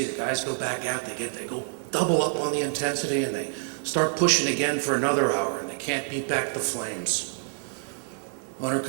the guys go back out. They go double up on the intensity, and they start pushing again for another hour. Can't beat back the flames. Owner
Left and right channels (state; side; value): silent; left; digital silence